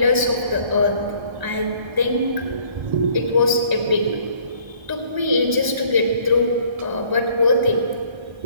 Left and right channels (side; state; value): left; late; 1.3 ms